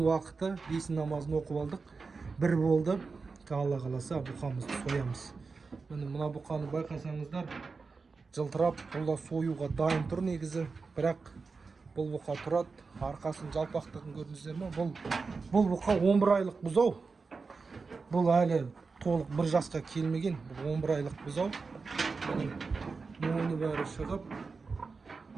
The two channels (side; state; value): left; quieter; 4.5 dB